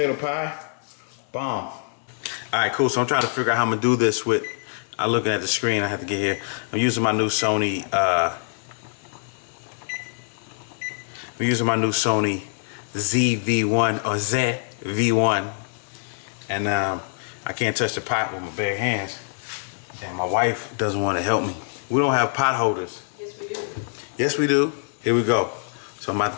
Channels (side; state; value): right; silent; digital silence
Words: pie. Bomb. All right, cool. So I'm trying to figure out how I'm gonna do this with. I'm looking at the screen. I have to get here. I'm using my new Sony. ZV1 or ZV1, and I can't touch the pot with my bare hands. And my wife doesn't want to help me. We don't have pot holders. Yes, we do. Yes, we do. Here we go. So I'm about